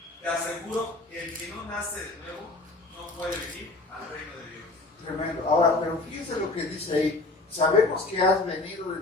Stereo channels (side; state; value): right; quieter; 3.2 dB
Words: te aseguro que el que no nace de nuevo no puede venir al reino de Dios. Tremendo. Ahora, pero fíjense lo que dice ahí. Sabemos que has venido